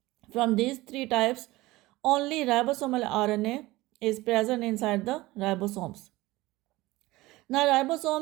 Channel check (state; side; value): quieter; left; 19.3 dB